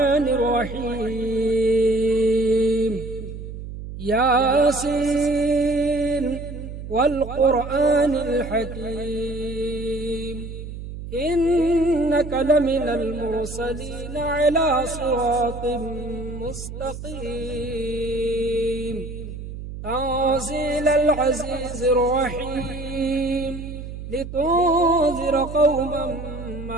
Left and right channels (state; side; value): noise; right; hum, 10 dB below the sound